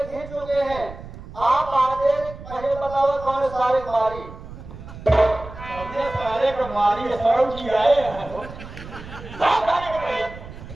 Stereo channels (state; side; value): noise; right; rumble, 14 dB below the sound